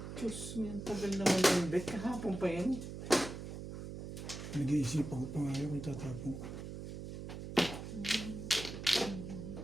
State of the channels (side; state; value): right; noise; hum, 8 dB below the sound